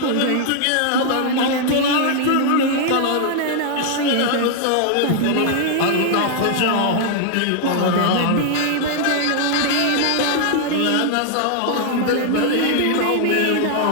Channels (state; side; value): different; both; correlation 0.00